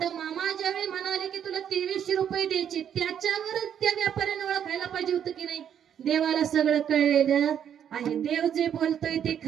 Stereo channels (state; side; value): quieter; left; 9.0 dB